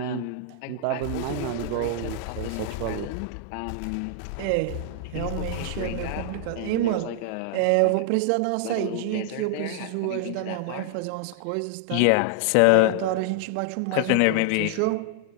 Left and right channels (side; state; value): both; different; correlation 0.00